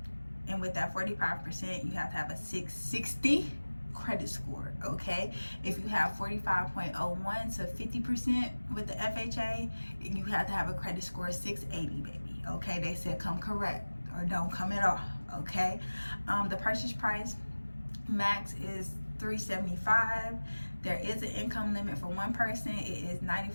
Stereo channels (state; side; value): inverted; both; correlation -1.00